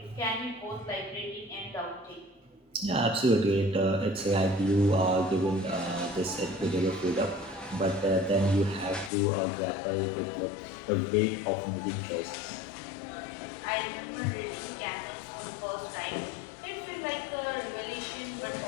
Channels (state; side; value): drops out; right; at 9.1 s